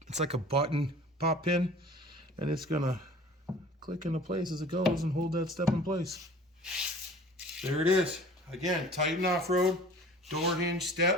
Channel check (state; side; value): normal; both; correlation 0.46